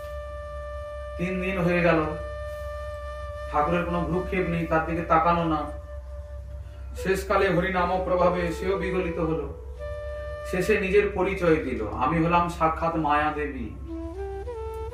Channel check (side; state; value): both; identical; correlation 1.00